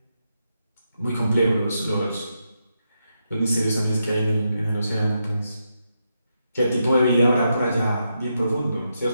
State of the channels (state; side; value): inverted; both; correlation -0.84